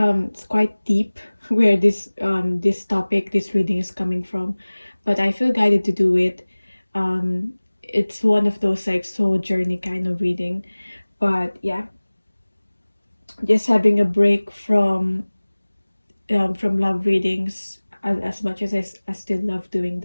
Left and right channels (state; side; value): inverted; both; correlation -1.00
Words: quite deep where this topic, this reading is coming from, but I feel guided to do it. It's one of those like soul journey kind of reading, but yeah, just having a break from love readings, as much as I still love doing